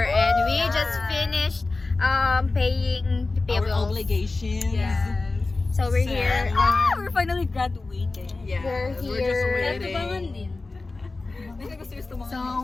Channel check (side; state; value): right; quieter; 3.5 dB